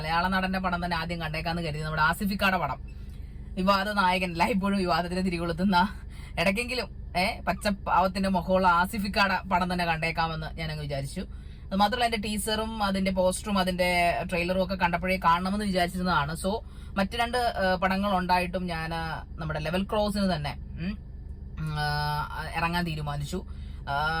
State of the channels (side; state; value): both; identical; correlation 1.00